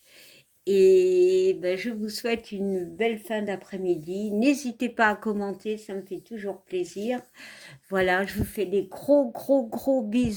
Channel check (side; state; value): both; identical; correlation 1.00